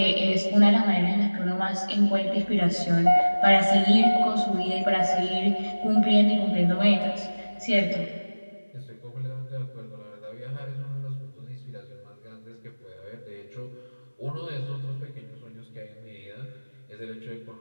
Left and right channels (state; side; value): inverted; both; correlation -1.00